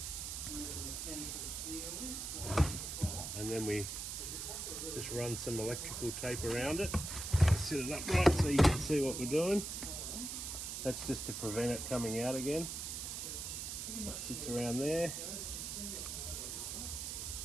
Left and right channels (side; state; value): right; noise; hiss, 5 dB below the sound